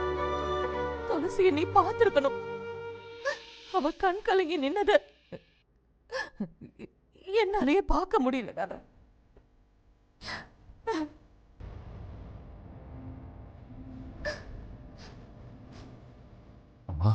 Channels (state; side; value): identical; both; correlation 1.00